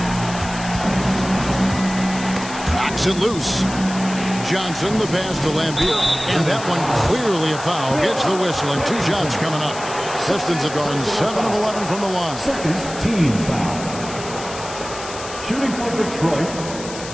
Knocks it loose. Johnson, the pass to Laimbeer. And that one clearly a foul. Gets the whistle, and 2 shots coming up. Pistons have gone 7 of 11 from the line. Second team foul. Shooting for Detroit,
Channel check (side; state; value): left; noise; hiss, 12 dB below the sound